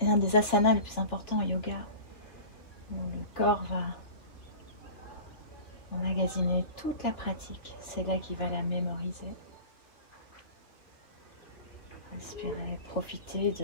un des asanas les plus importants au yoga. Où le corps va emmagasiner toute la pratique. C'est là qu'il va la mémoriser. Respirez, profitez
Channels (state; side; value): late; right; 3.0 ms